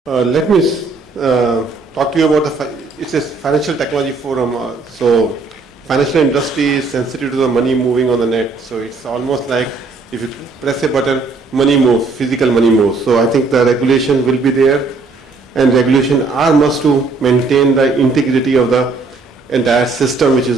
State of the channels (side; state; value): left; quieter; 3.9 dB